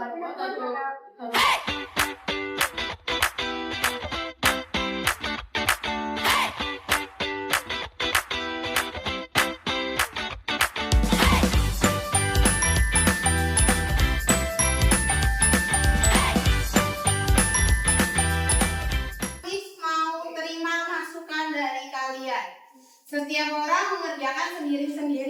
Setiap orang mengerjakan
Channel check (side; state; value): both; identical; correlation 1.00